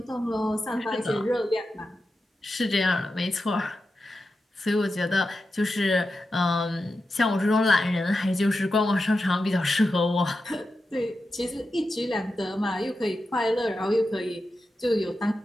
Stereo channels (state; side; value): normal; both; correlation 0.90